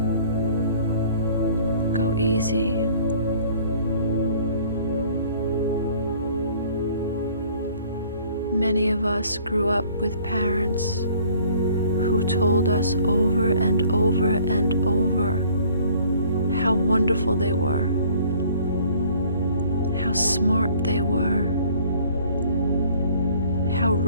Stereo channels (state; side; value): inverted; both; correlation -0.55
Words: Go easy. Many of us grew up with parents who told us over and over and over how wonderful they were, how smart they were, how